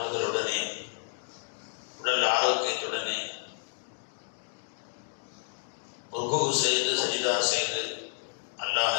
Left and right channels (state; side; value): silent; right; digital silence